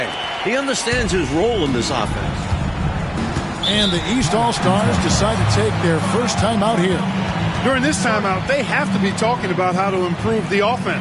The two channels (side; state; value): both; identical; correlation 1.00